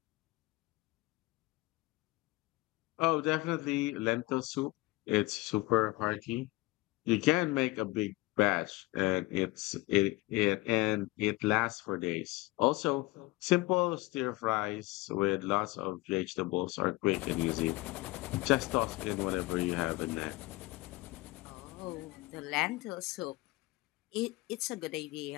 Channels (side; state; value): right; quieter; 21.4 dB